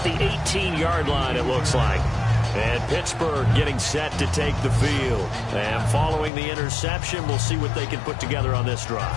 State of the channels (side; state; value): right; drops out; at 6.3 s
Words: the 18-yard line, it looks like. And Pittsburgh getting set to take the field. And following the interception, we'll see what they can put together on this drive.